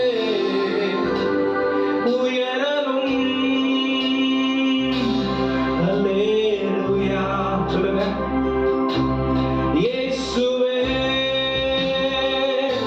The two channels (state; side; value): identical; both; correlation 1.00